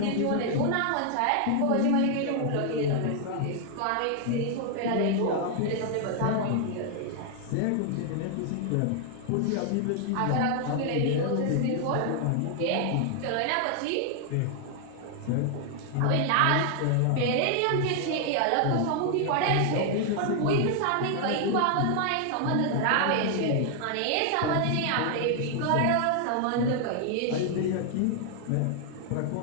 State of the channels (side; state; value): both; different; correlation 0.00